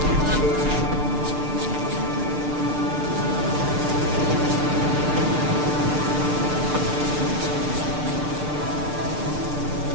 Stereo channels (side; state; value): left; late; 6.7 ms